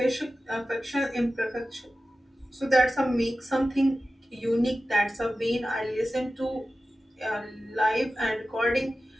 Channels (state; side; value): normal; both; correlation 0.94